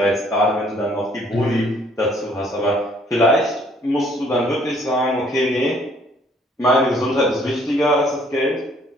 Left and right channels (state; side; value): normal; both; correlation 0.62